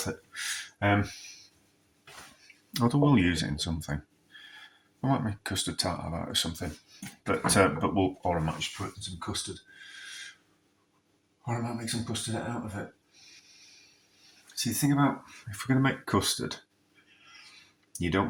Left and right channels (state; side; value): identical; both; correlation 1.00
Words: it. Although we'll use it in something. I might make custard tart out of it or something. But I might just put in some custard. Or I might make some custard out of it. See, the thing about, if we're going to make custard, you